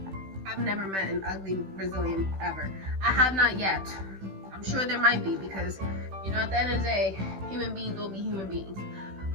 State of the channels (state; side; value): late; left; 16 ms